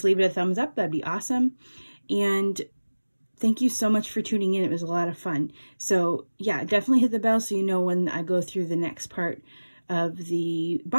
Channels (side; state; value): both; inverted; correlation -1.00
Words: leave it a thumbs up, that'd be awesome. And thank you so much for tuning in. It was a lot of fun. So yeah, definitely hit the bell so you know when I go through the next part of the